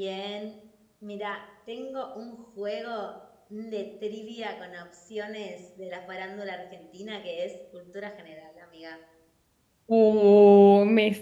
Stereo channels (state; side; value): identical; both; correlation 1.00